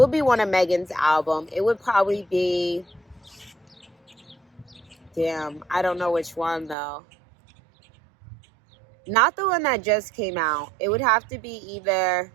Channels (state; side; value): drops out; left; at 6.8 s